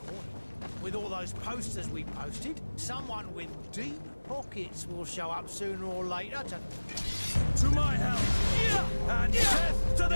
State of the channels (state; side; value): inverted; both; correlation -1.00